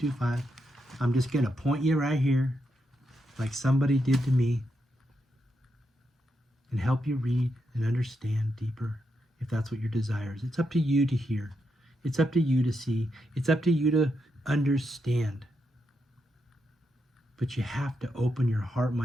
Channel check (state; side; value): normal; both; correlation 0.83